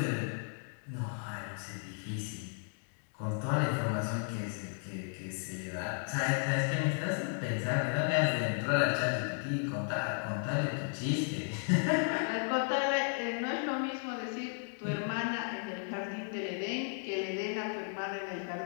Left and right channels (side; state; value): right; silent; 55 dB below the other